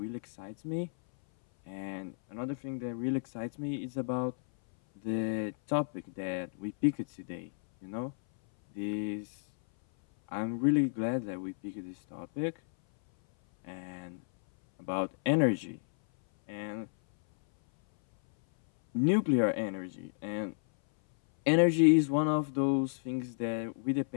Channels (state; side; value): silent; right; 56 dB below the other